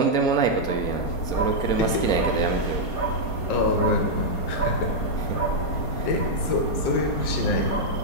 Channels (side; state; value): right; late; 4.2 ms